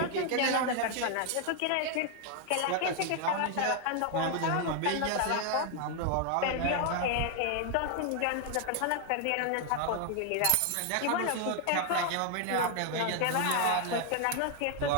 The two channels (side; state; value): both; different; correlation 0.00